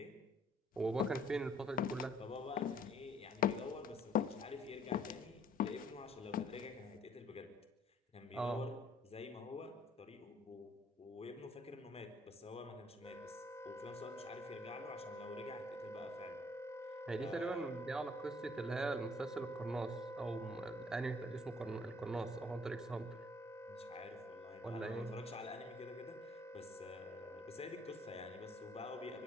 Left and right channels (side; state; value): both; normal; correlation 0.61